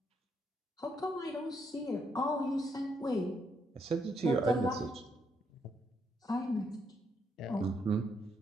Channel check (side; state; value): both; normal; correlation 0.76